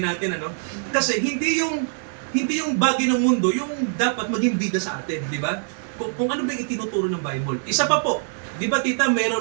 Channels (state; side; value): silent; left; digital silence